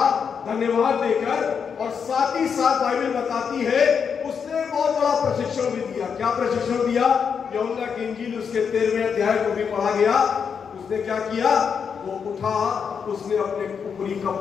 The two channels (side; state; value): right; quieter; 6.6 dB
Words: धन्यवाद देकर, और साथ ही साथ बाइबल बताती है उसने बहुत बड़ा प्रशिक्षण भी दिया। क्या प्रशिक्षण दिया? यूहन्ना की इंजील उसके 13वें अध्याय को भी पढ़ा गया। उसने क्या किया? वो उठा, उसने अपने ऊपरी